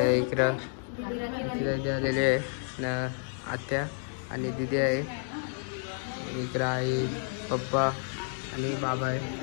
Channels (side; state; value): right; silent; 58 dB below the other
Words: इकडं आलेले आहे ना, आत्या आणि दिदी आहे. इकडं आई, पप्पा आणि बाबा आहे.